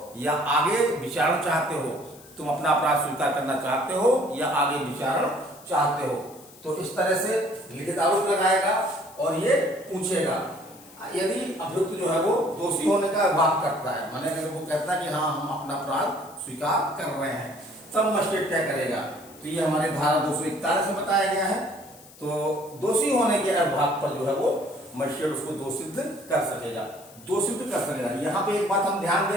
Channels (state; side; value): noise; left; hiss, 22 dB below the sound